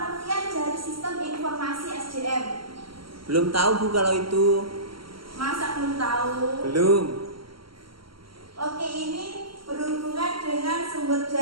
dari sistem informasi SDM? Belum tahu, Bu, kalau itu. Masa belum tahu? Belum. Oke, ini berhubungan dengan sumber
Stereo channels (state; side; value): late; left; 0.74 ms